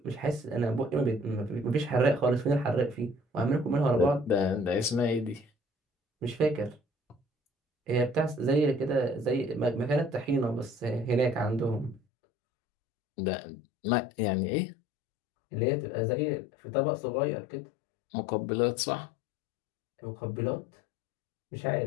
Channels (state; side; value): drops out; right; at 12.0 s